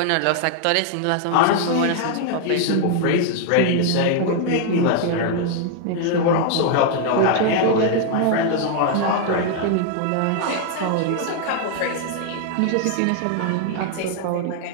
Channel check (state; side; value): different; both; correlation 0.00